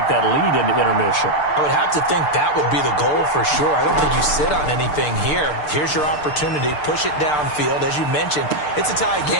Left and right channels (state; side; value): late; right; 6.7 ms